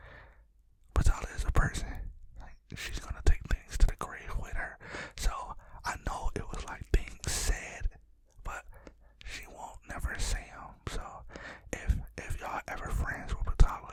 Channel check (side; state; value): both; identical; correlation 1.00